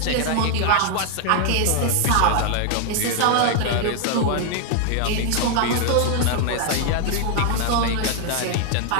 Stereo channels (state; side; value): different; both; correlation 0.00